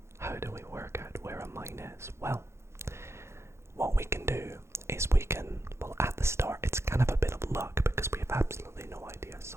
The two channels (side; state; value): left; late; 0.13 ms